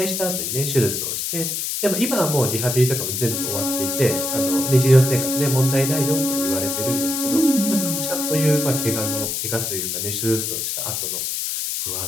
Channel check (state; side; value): noise; left; hiss, 2 dB below the sound